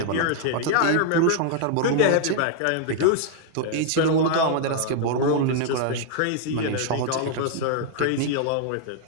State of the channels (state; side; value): different; both; correlation 0.00